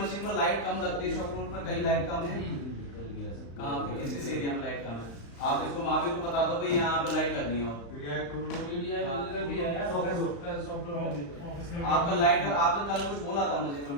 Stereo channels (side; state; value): right; late; 35 ms